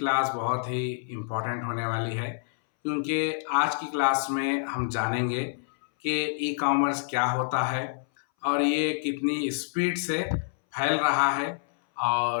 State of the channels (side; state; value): right; silent; 60 dB below the other